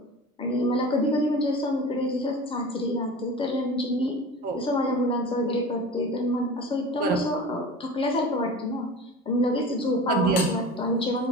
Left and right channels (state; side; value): normal; both; correlation 0.35